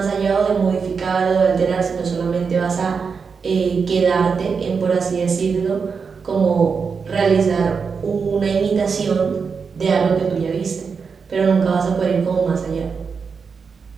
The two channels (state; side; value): quieter; left; 5.6 dB